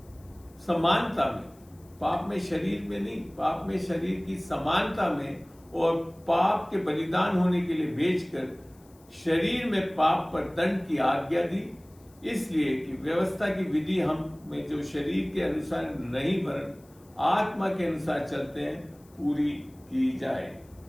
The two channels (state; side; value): noise; left; hiss, 30 dB below the sound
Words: समानता में, पाप में शरीर में नहीं, पाप में शरीर की समानता में और पाप के बलिदान होने के लिए भेजकर शरीर में पाप पर दंड की आज्ञा दी, इसलिए कि व्यवस्था की विधि हम में जो शरीर के अनुसार नहीं वरन आत्मा के अनुसार चलते हैं पूरी की जाए।